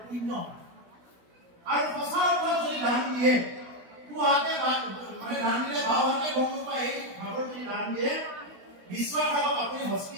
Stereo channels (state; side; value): late; left; 16 ms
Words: পুণ্য আৰু সঁচা অৰ্থত যদি দান দিয়ে পুৱাতে মানে দান দিলে বাও হাতে গম নোপায় এই ভাগৰ যদি দান দিয়ে বিশ্বাস ৰাখক আপুনি